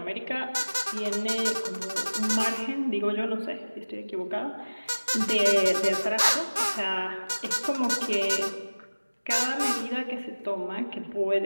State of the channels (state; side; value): inverted; both; correlation -1.00